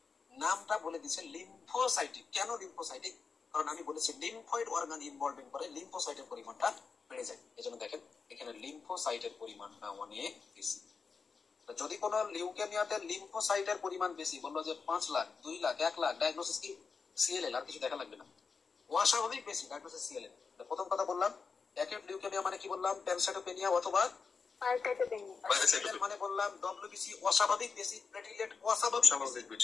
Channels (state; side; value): quieter; right; 5.1 dB